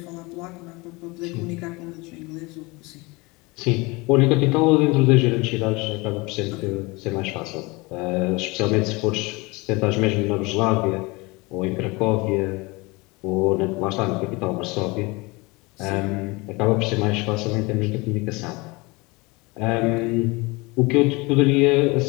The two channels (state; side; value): quieter; right; 25.1 dB